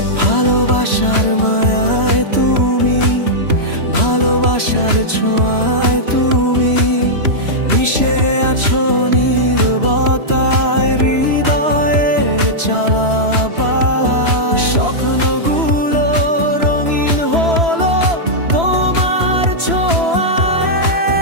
ভালোবাসার মায়ায় তুমি, ভালোবাসার ছোঁয়ায় তুমি মিশে আছো নীরবতায়, হৃদয়ের চালাবার স্বপ্নগুলো রঙিন হলো তোমার ছোঁয়ায়।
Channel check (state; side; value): late; left; 3.0 ms